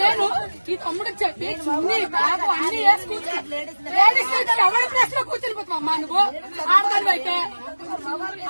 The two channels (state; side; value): inverted; both; correlation -1.00